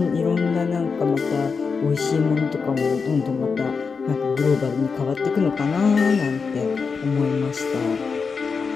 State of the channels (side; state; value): right; quieter; 5.2 dB